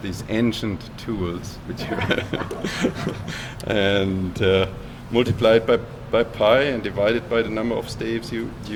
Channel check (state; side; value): identical; both; correlation 1.00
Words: these ancient tools, which you and multiply it by pi and divide it by the number of staves you